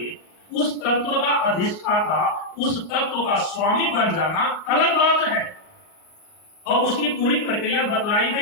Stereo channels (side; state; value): right; late; 38 ms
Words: उस तत्व का अधिष्ठाता, उस तत्व का स्वामी बन जाना अलग बात है, और उसकी पूरी प्रक्रिया बतलाई